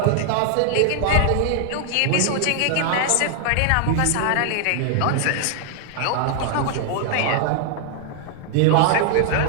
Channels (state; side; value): different; both; correlation 0.00